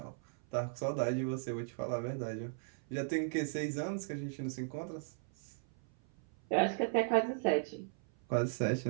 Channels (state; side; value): silent; left; 53 dB below the other